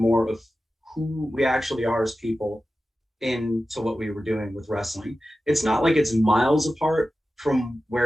of who we actually are as people into what we were doing with wrestling. It's not like it's miles apart from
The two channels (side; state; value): both; normal; correlation 0.94